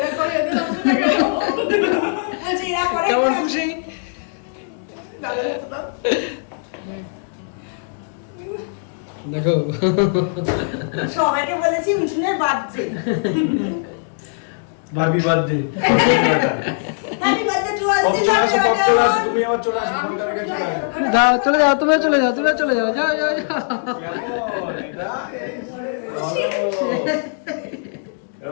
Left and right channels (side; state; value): right; silent; digital silence